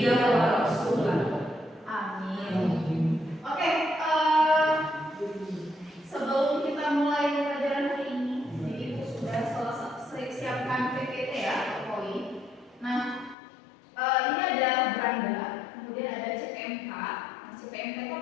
wa rasulah. Amin. Oke, sebelum kita mulai pelajaran hari ini, jadi itu sudah siapkan PPT ya, poin. Nah, ini ada beranda, kemudian ada CPMK. Nah, CPMK itu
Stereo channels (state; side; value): drops out; right; at 13.4 s